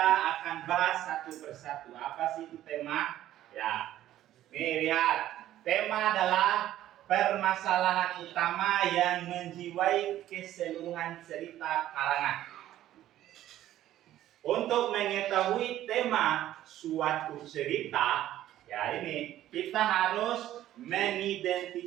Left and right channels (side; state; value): left; quieter; 13.1 dB